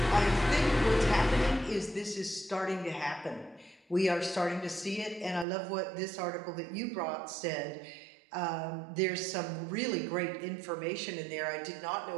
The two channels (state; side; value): drops out; left; at 5.5 s